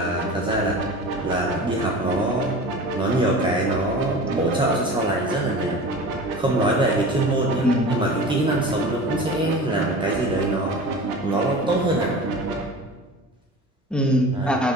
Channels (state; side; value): normal; both; correlation 0.36